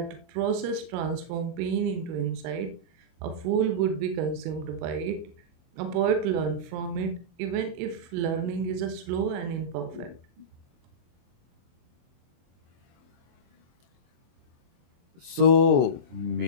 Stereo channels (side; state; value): left; late; 24 ms